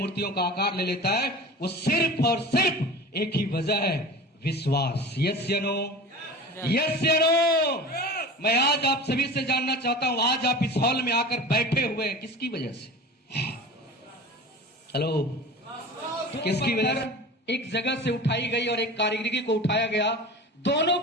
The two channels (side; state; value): both; normal; correlation 0.36